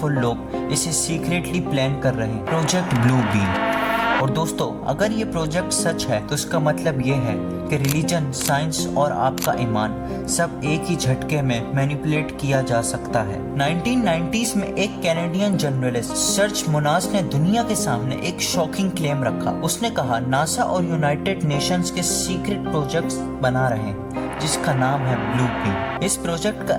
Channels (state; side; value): identical; both; correlation 1.00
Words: लोग इसे सीक्रेटली प्लान कर रहे हैं, प्रोजेक्ट ब्लू बीम। और दोस्तों अगर ये प्रोजेक्ट सच है तो इसका मतलब ये है कि रिलीजन, साइंस और आपका ईमान सब एक ही झटके में मैनिपुलेट किया जा सकता है। 1990s में एक कैनेडियन जर्नलिस्ट सर्च मुनास ने दुनिया के सामने एक शॉकिंग क्लेम रखा। उसने कहा नासा और यूनाइटेड नेशंस के सीक्रेट प्रोजेक्ट्स बना रहे हैं जिसका नाम है ब्लू बीम। इस प्रोजेक्ट का